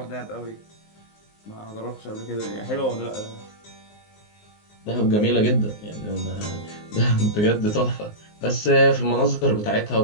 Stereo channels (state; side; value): late; right; 19 ms